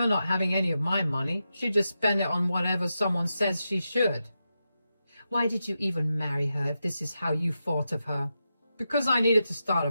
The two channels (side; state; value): both; inverted; correlation -0.88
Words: not having any of my money. She just spend it on whatever someone says she should." "Why did you even marry her if this is how you thought of her?" "Because I needed to start a